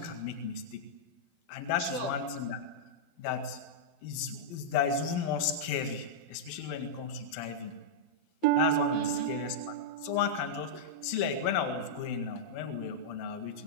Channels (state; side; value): late; right; 12 ms